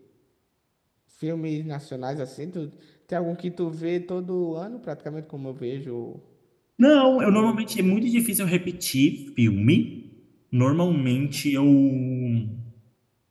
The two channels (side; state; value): both; identical; correlation 1.00